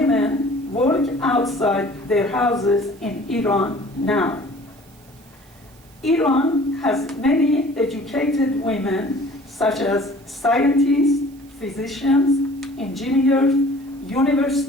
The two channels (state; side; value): noise; right; hiss, 29 dB below the sound